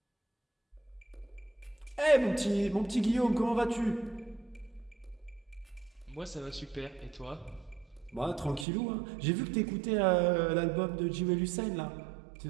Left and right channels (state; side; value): drops out; left; at 8.7 s